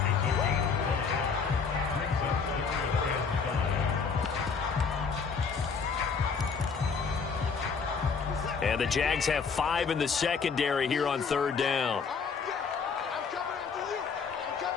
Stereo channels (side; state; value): right; quieter; 5.5 dB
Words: And the Jags have 5 in the secondary here on 3rd down.